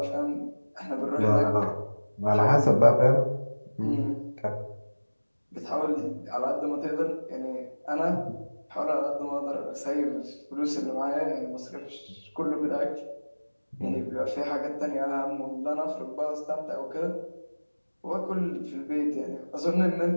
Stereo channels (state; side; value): inverted; both; correlation -1.00